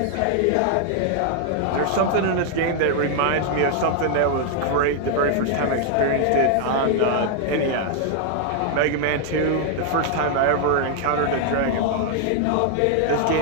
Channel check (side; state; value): both; different; correlation 0.00